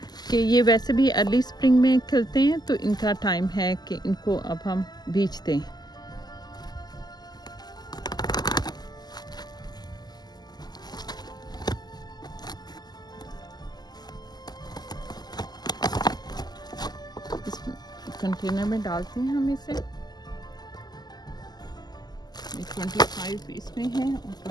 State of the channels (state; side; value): late; right; 0.20 ms